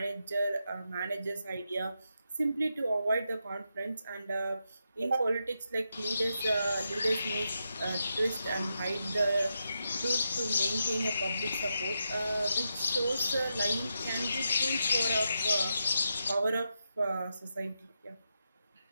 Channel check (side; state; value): both; inverted; correlation -0.85